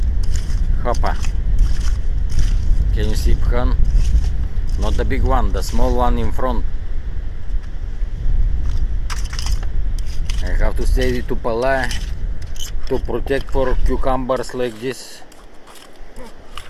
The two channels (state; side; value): identical; both; correlation 1.00